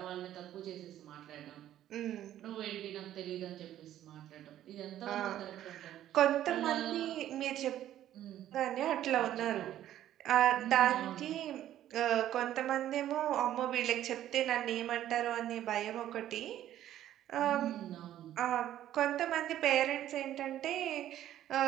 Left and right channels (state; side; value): quieter; left; 12.3 dB